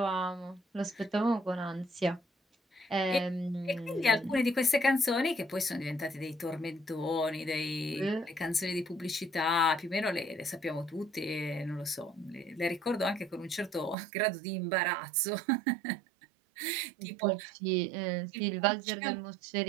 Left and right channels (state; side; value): drops out; left; at 14.0 s